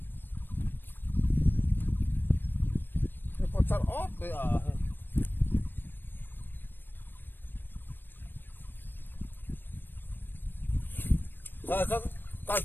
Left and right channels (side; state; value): right; late; 0.095 ms